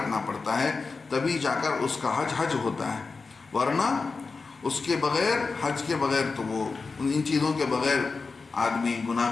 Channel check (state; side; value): quieter; right; 4.3 dB